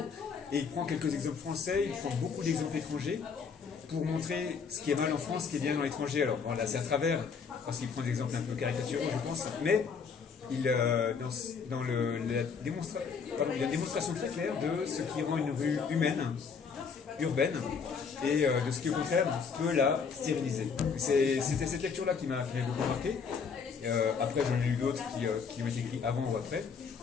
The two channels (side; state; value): right; quieter; 5.9 dB